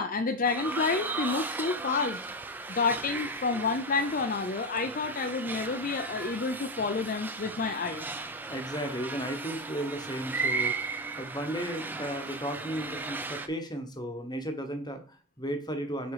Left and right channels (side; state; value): both; normal; correlation 0.14